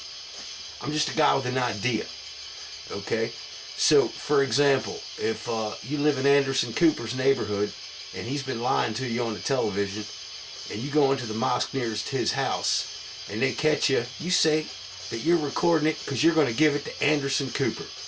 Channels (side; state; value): both; identical; correlation 1.00